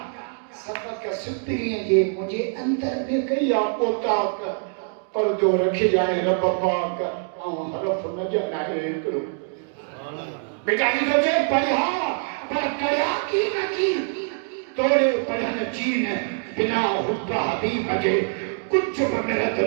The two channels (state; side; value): silent; left; 59 dB below the other